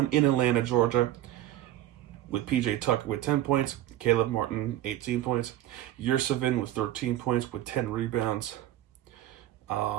in Atlanta, Georgia, with PJ Tucker with 10 points, Caleb Martin 18 points, Yurtseven with 13 points with 10 rebounds,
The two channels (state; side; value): quieter; left; 13.8 dB